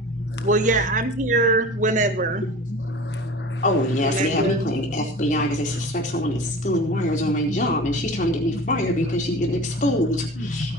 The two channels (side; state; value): both; normal; correlation 0.38